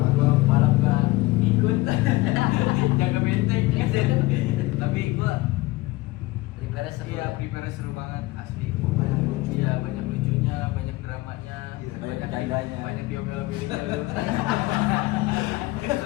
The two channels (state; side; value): quieter; right; 20.1 dB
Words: gua balap gak ikut jaga benteng tapi gua Prepare seru. iya prepare seru banget asli. banyak lucu. Iya banyak lucunya, banyak dramanya, Iya, banyak bercandanya. banyak diomel-omelinnya lu.